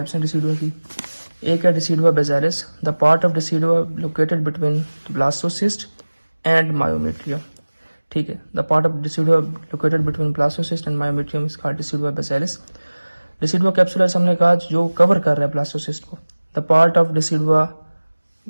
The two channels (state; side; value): inverted; both; correlation -1.00